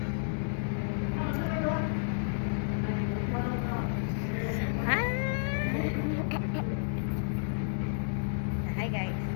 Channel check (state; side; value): silent; right; digital silence